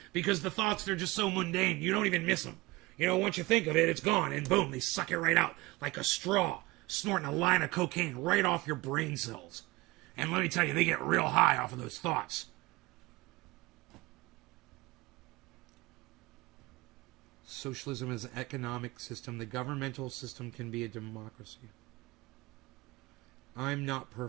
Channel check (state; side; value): quieter; left; 21.3 dB